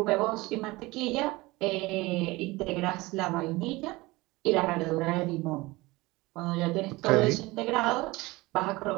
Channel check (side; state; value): left; quieter; 21.5 dB